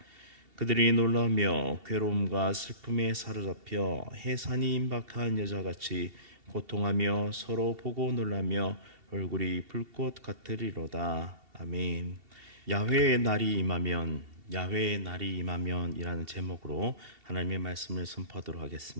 그들이 놀라며 괴로움과 슬픔에 사로잡혀 해산이 임박한 여자같이 고통하며 서로 보고 놀라며 얼굴이 불꽃 같으리로다. 아멘. 야훼의 날이 임하면, 야훼의 날이 임하면이라는 제목으로 하나님의 말씀을 선포하도록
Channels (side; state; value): left; late; 2.7 ms